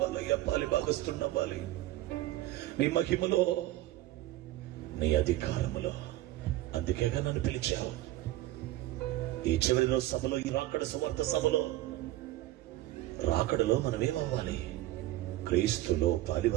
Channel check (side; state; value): left; quieter; 15.9 dB